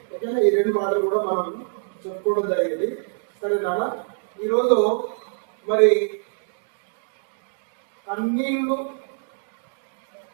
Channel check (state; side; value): silent; left; digital silence